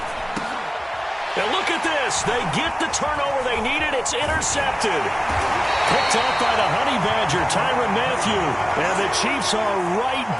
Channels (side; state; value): both; identical; correlation 1.00